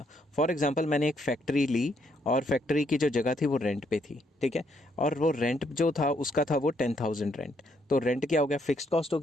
फॉर एग्जांपल, मैंने एक फैक्ट्री ली और फैक्ट्री की जो जगह थी वो रेंट पे थी, ठीक है। और वो रेंट जो था उसका था वो 10,000 रेंट। तो रेंट क्या हो गया? फिक्स्ड कॉस्ट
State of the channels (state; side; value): normal; both; correlation 0.73